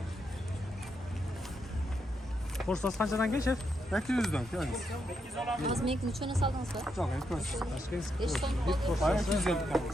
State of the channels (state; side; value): normal; both; correlation 0.81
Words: Porsiyanız qanchadan keyin şef? 800'dan yani. Az menga nechani soldingiz ba? Çok etmez. Tashkent. 5 so'm qoldi. Bayağı 250 tane.